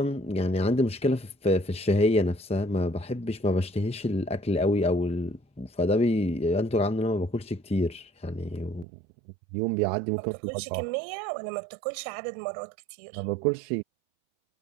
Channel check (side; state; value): left; drops out; at 8.8 s